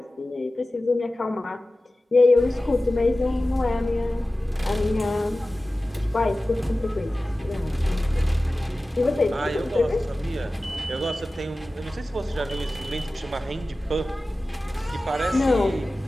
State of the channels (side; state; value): both; normal; correlation 0.96